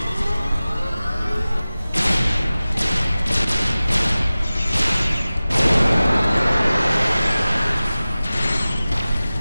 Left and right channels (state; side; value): inverted; both; correlation -0.97